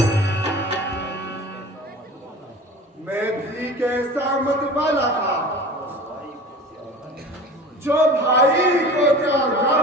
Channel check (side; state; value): both; normal; correlation 0.38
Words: मैं भी कैसा मत वाला था जो भाई को त्यागा